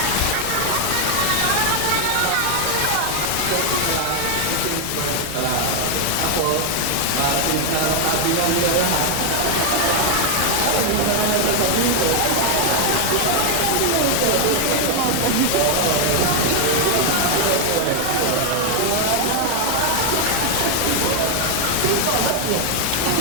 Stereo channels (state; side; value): different; both; correlation 0.00